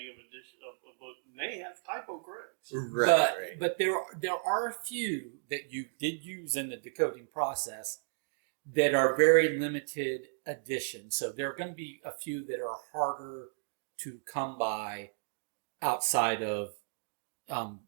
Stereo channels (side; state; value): left; silent; digital silence